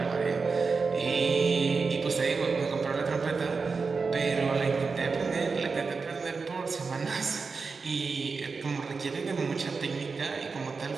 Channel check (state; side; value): quieter; left; 4.7 dB